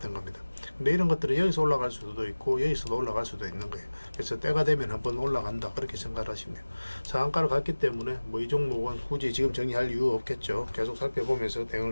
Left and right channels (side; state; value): both; inverted; correlation -1.00